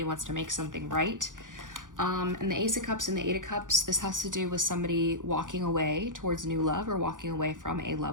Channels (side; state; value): left; late; 0.88 ms